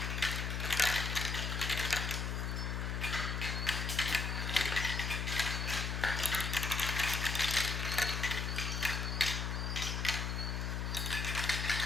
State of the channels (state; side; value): noise; left; hum, 1 dB below the sound